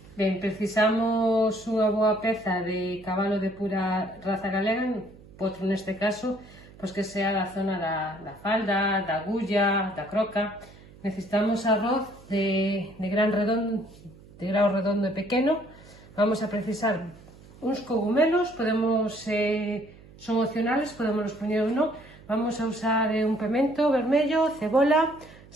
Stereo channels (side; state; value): right; noise; hum, 22 dB below the sound